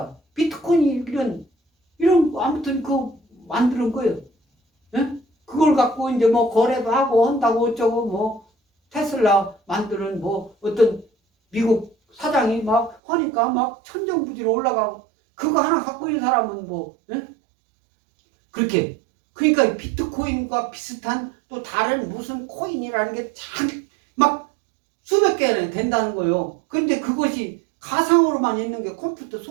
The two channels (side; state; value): left; drops out; at 13.0 s